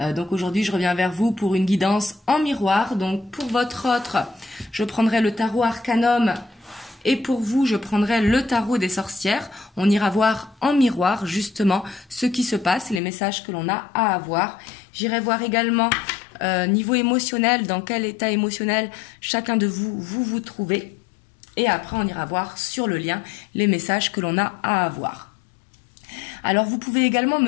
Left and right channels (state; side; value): drops out; right; at 13.0 s